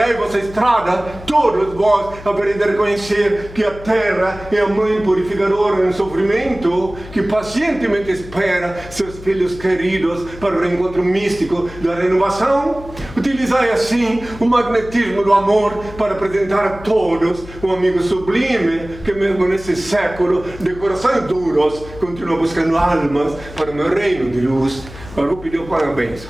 vossa estrada, todos vós havereis de reconhecer que a terra é a mãe purificadora no sofrimento, que pacientemente espera seus filhos queridos para o reencontro místico da renovação. Utilizai assim o magnetismo do amor para apresentar a todos um amigo sublime que mesmo nesse século de corações duros continua buscando almas para o meu reino de luz. Agora vou pedir o parabéns.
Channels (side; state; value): left; noise; hum, 16 dB below the sound